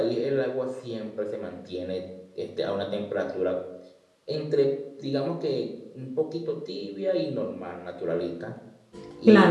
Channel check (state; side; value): identical; both; correlation 1.00